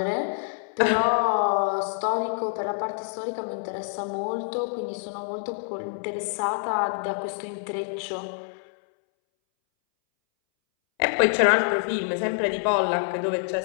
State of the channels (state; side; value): silent; right; 61 dB below the other